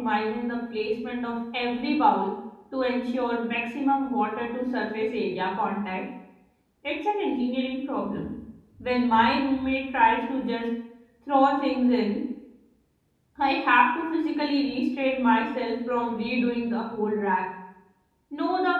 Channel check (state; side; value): identical; both; correlation 1.00